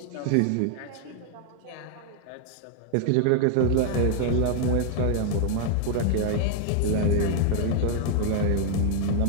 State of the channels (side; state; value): both; different; correlation 0.00